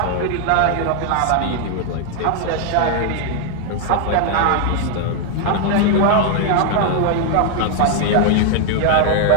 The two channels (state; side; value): different; both; correlation 0.00